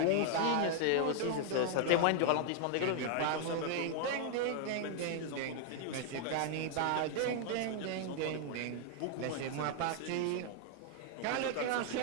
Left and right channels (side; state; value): both; different; correlation 0.00